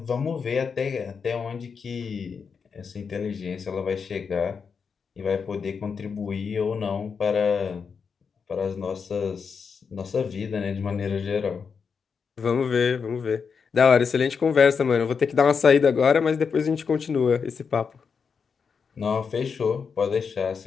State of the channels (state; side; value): quieter; right; 5.9 dB